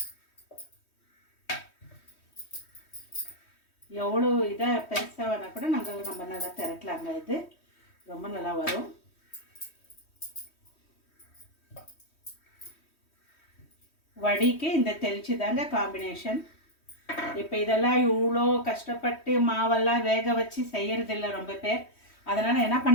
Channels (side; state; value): right; late; 3.1 ms